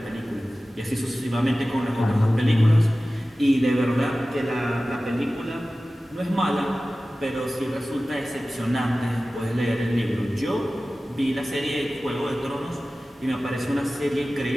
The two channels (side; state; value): both; normal; correlation 0.96